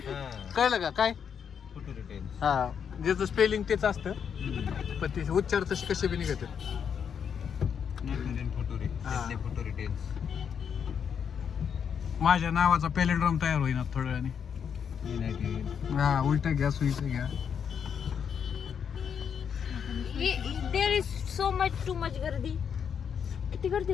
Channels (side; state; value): right; quieter; 7.4 dB